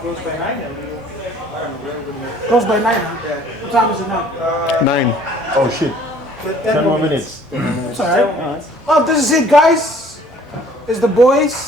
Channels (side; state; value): both; normal; correlation 0.55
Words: by 9. Close by 9, huh? What time is it now? 9. Oh shit. 10 more minutes. It's alright. Oh, this is it, guys. It's the